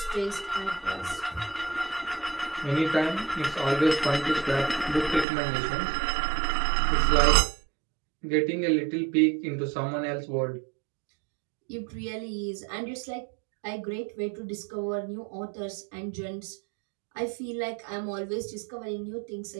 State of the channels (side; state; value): left; drops out; at 5.2 s